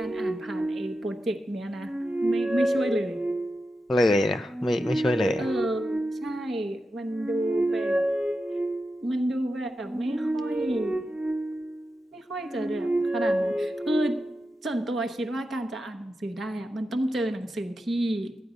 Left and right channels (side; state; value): both; normal; correlation 0.90